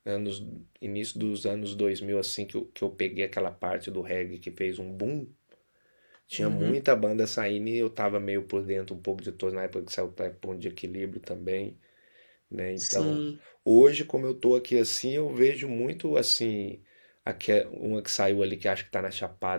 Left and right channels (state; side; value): inverted; both; correlation -1.00